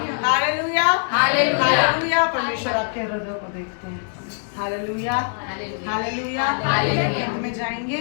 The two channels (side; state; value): right; silent; digital silence